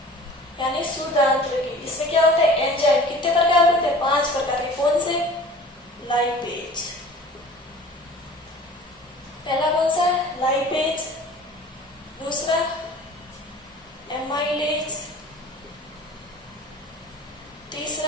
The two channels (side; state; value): both; normal; correlation 0.44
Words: यानी शुद्ध आंत्र की। इसमें क्या होता है, एंजाइम। कितने प्रकार होते हैं, 5 प्रकार के। कौन से, लाइपेज। पहला कौन सा है, लाइपेज। दूसरा एमाइलेज।